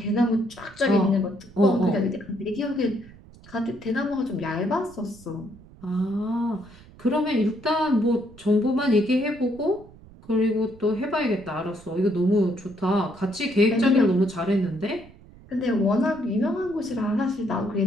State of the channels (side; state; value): right; noise; rumble, 22 dB below the sound